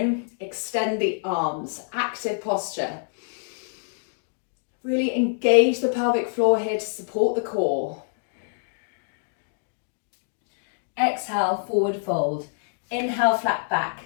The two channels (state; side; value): silent; right; digital silence